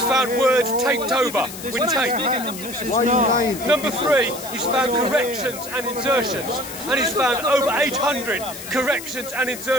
found words taped over with tape. Number 3, he's found corrections and insertions. And he's found over 800 corrections and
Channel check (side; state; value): left; noise; hiss, 12 dB below the sound